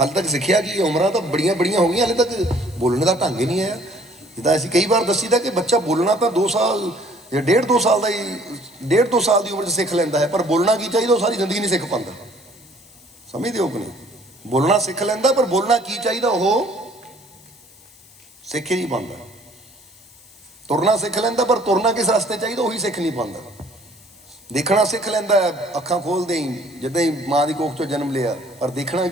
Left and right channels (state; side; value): noise; left; hiss, 25 dB below the sound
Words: ਤੱਕ ਸਿੱਖਿਆ ਕੀ? ਉਮਰਾਂ ਤਾਂ ਬੜੀਆਂ ਹੋ ਗਈਆਂ, ਹਾਲੇ ਤੱਕ ਬੋਲਣ ਦਾ ਢੰਗ ਹੀ ਨਹੀਂ ਆਇਆ। ਜਿੱਦਾਂ ਅਸੀਂ ਕਈ ਵਾਰ ਦੱਸੀਦਾ ਕਿ ਬੱਚਾ ਬੋਲਣਾ ਤਾਂ 2 ਸਾਲ ਜਾਂ 1.5-2 ਸਾਲ ਦਾ ਹੀ, 1.5-2 ਸਾਲ ਦੀ ਉਮਰ 'ਚ ਸਿੱਖ ਲੈਂਦਾ ਹੈ। ਪਰ ਬੋਲਣਾ ਕੀ ਚਾਹੀਦਾ ਉਹ ਸਾਰੀ ਜ਼ਿੰਦਗੀ ਨਹੀਂ ਸਿੱਖ ਪਾਉਂਦਾ। ਸਮਝਦੇ ਹੋ ਕਿ ਨਹੀਂ? ਬੋਲਣਾ ਸਿੱਖ ਲੈਂਦਾ, ਪਰ ਬੋਲਣਾ ਕੀ ਚਾਹੀਦਾ ਉਹ ਸਿੱਖ ਹੀ ਨਹੀਂ ਪਾਉਂਦਾ। ਤੁਰਨਾ ਸਿੱਖ ਲੈਂਦਾ, ਪਰ ਤੁਰਨਾ ਕਿਸ ਰਸਤੇ ਚਾਹੀਦਾ ਉਹੀ ਸਿੱਖ ਨਹੀਂ ਪਾਉਂਦਾ। ਦੇਖਣਾ ਸਿੱਖ ਲੈਂਦਾ, ਅੱਖਾਂ ਖੋਲਦੇ ਹੀ ਜਿੱਦਾਂ ਹੀ ਮਾਂ ਦੀ ਕੋਖ 'ਚੋਂ ਜਨਮ ਲਿਆ, ਪਰ ਦੇਖਣਾ